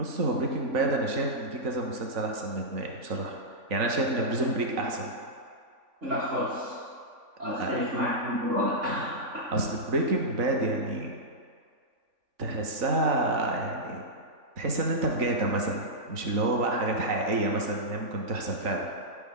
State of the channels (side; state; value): left; late; 3.5 ms